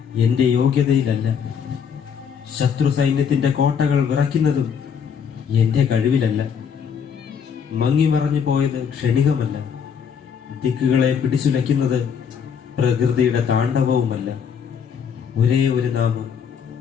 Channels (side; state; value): right; quieter; 7.2 dB